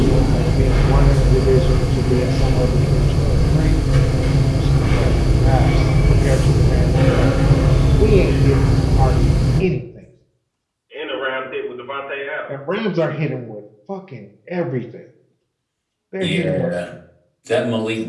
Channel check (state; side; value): identical; both; correlation 1.00